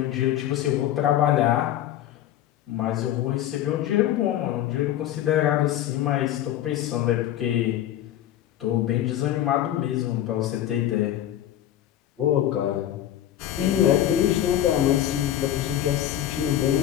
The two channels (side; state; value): right; quieter; 12.1 dB